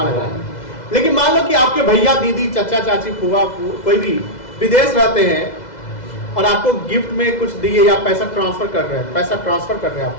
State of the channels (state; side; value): late; right; 2.0 ms